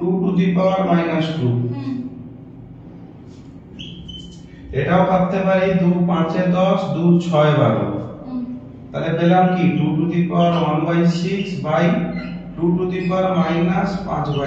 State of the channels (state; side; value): identical; both; correlation 1.00